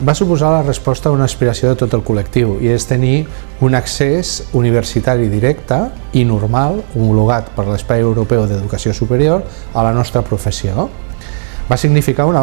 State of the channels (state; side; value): silent; left; digital silence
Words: suposar la resposta a una aspiració de tot el col·lectiu i és tenir un accés universitari directe i normal, homologat per l'Espai Europeu d'Educació Superior, a la nostra professió. Va significar un